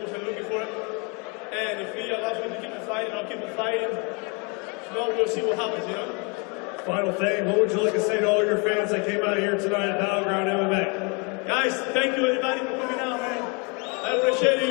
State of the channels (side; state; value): right; quieter; 32.2 dB